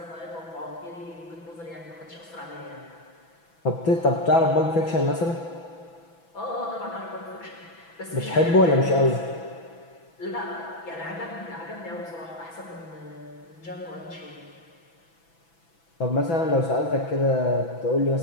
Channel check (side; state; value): right; late; 6.0 ms